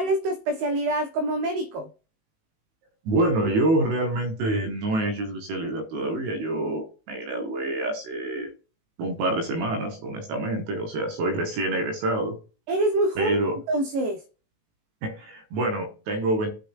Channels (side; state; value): left; late; 19 ms